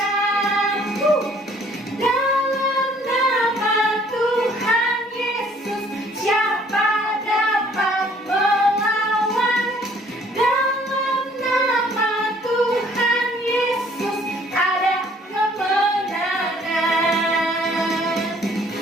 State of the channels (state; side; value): normal; both; correlation 0.59